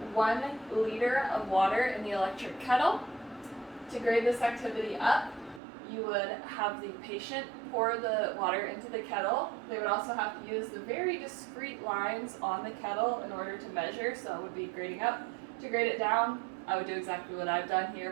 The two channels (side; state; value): left; drops out; at 5.6 s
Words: 1 liter of water in the electric kettle. To grade this activity up, you would have the patient pour the water into the kettle. They would also have to use the very discrete lines on the kettle in order to measure, so it would be grading up. To grade it down, I would do exactly what I've done here,